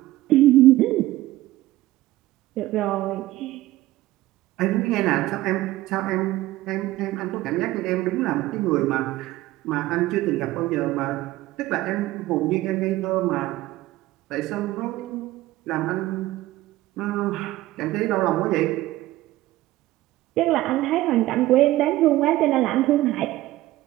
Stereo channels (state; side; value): quieter; left; 16.6 dB